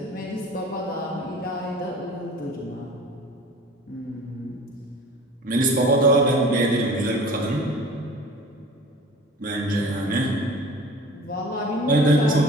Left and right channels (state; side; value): normal; both; correlation 0.42